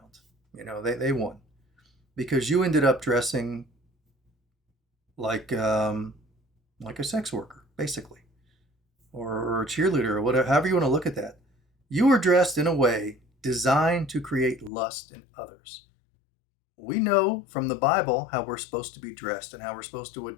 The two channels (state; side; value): drops out; right; at 14.7 s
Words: You know, they won. Because you ended up dressing like a sex worker, basically, or a cheerleader, or whatever, however you want to look at that. You were dressed in a way designed to create lust in others. We know from the Bible how we're supposed to be dressed and how we're supposed to